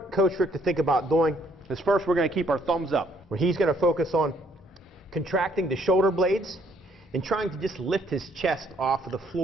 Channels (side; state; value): both; normal; correlation 0.67